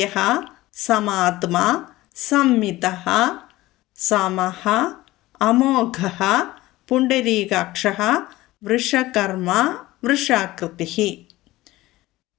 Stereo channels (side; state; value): right; quieter; 17.9 dB